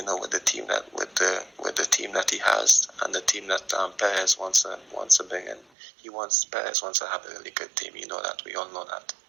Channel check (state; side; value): drops out; left; at 5.7 s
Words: the team that he has and the team that Perez wants to bring in, Perez wants to have a really good team. That, we all know that.